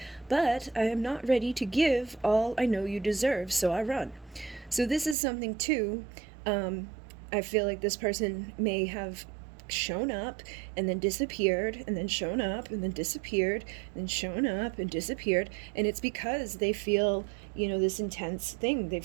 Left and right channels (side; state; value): left; drops out; at 5.2 s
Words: but I am not ready to give all I know you deserve, so I run. So this is something too. I feel like this person may have shown up and then disappeared and then shown up and then disappeared and then shown up and disappeared, and it's because they feel, you know, this intense thing. They